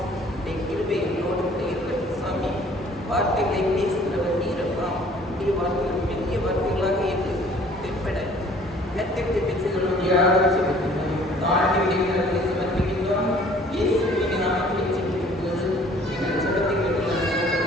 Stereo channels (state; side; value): normal; both; correlation 0.54